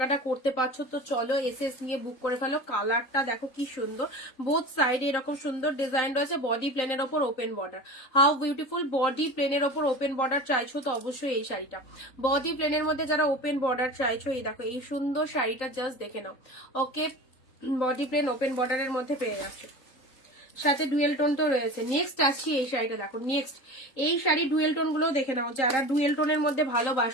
করতে পারছো, তো চলো এসএস নিয়ে বুক করে ফেলো। কালারটা দেখো কি সুন্দর, বোথ সাইডে এরকম সুন্দর ডিজাইন রয়েছে, বডি প্লেনের ওপর open border, how beautiful. Body প্লেনের ওপর ওপেন বর্ডার চাইছো তো অবশ্যই এই শাড়িটা, বডি প্লেনের মধ্যে যারা ওপেন বর্ডার চাইছো, এই দেখো এই সুন্দর শাড়িটা জাস্ট দেখে নাও। ওকে, বডি প্লেন ওপেন বর্ডারের মধ্যে পেয়ে যাচ্ছে, সাথে ডুয়েল টোন তো রয়েছে। নেক্সট আসছি এই শাড়িটা দেখো, নেক্সট এই শাড়ি ডুয়েল টোন গুলো দেখে নাও, যারা ডুয়েল টোনের মধ্যে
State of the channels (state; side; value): late; right; 3.9 ms